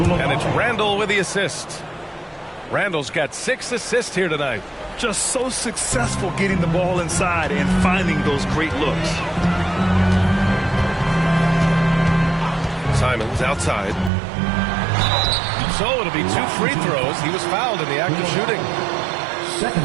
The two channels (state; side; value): drops out; left; at 14.1 s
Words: it's Randall with the assist. Randall's got 6 assists here tonight. Just so successful getting the ball inside and finding those great looks. Simons outside. So it'll be 2 free throws. He was fouled in the act of shooting.